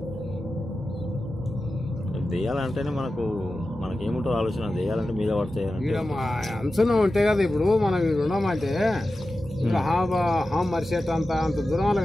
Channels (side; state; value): both; normal; correlation 0.93